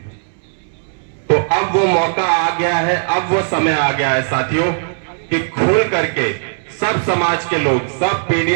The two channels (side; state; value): left; silent; digital silence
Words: तो अब वो मौका आ गया है, अब वो समय आ गया है साथियों कि खुल करके सब समाज के लोग, सब